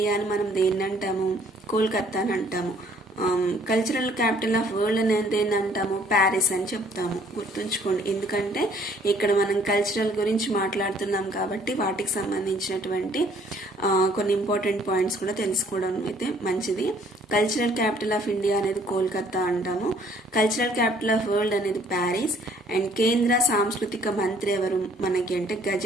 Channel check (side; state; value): both; normal; correlation 0.60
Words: అని మనం దేన్ని అంటాము? కోల్కతా అని అంటాము. కల్చరల్ క్యాపిటల్ ఆఫ్ వరల్డ్ అనేది ఏంటంటాము, ప్యారిస్ అని చెప్తాము. గుర్తుంచుకోండి, ఎందుకంటే ఇక్కడ మనం కల్చరల్ గురించి మాట్లాడుతున్నాం కాబట్టి వాటికి సంబంధించినటువంటి కొన్ని ఇంపార్టెంట్ పాయింట్స్ కూడా తెలుసుకోవడం అయితే మంచిది. కల్చరల్ క్యాపిటల్ ఆఫ్ ఇండియా అనేది కోల్కతా అంటాము. కల్చరల్ క్యాపిటల్ ఆఫ్ వరల్డ్ అనేది ప్యారిస్. అండ్ కేంద్ర సాంస్కృతిక మంత్రి ఎవరు మనకి అంటే